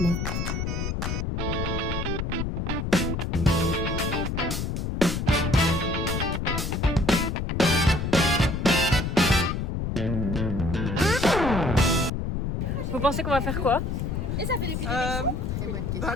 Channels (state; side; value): noise; left; rumble, 2 dB below the sound